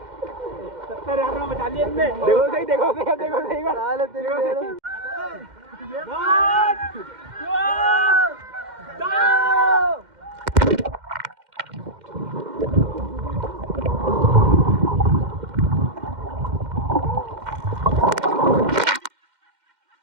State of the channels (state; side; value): late; left; 2.1 ms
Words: 70,000 में बचा लिए इनने। देखो सही, देखो सही, देखो सही। साले तेरी